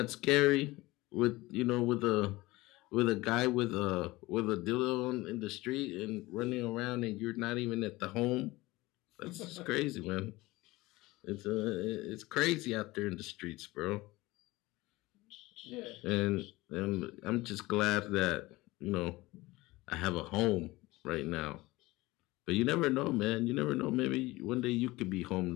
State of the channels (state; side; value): quieter; right; 20.2 dB